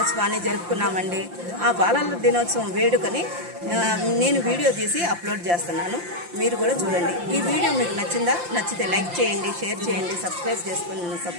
జరుపుకున్నామండి. ఆ బాలల దినోత్సవం వేడుకని నేను వీడియో తీసి అప్లోడ్ చేస్తున్నాను. మీరు కూడా చూడండి. ఈ వీడియో మీకు నచ్చిందా? నచ్చితే లైక్ చేయండి, షేర్ చేయండి, సబ్స్క్రైబ్ చేసుకుని నన్ను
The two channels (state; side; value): late; left; 5.7 ms